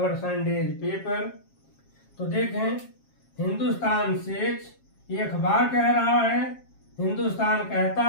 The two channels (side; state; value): right; late; 7.4 ms